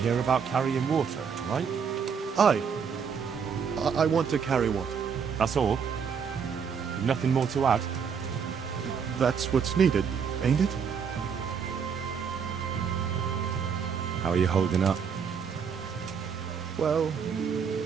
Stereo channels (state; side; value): quieter; left; 6.6 dB